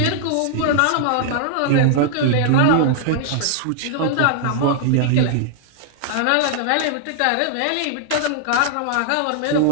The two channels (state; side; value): different; both; correlation -0.01